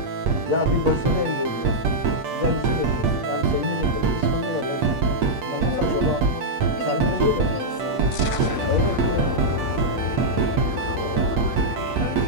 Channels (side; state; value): left; late; 8.5 ms